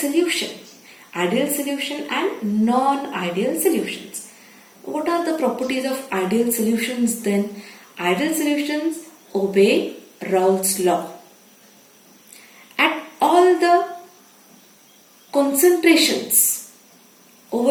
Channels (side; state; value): both; identical; correlation 1.00